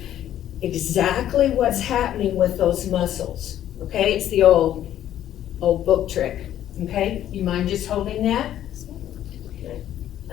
exactly what's happening with those muscles, okay? It's the old book trick, okay? You mind just holding that?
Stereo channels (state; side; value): quieter; right; 11.6 dB